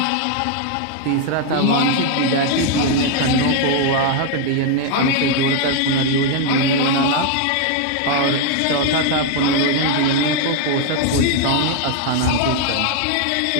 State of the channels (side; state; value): both; different; correlation 0.00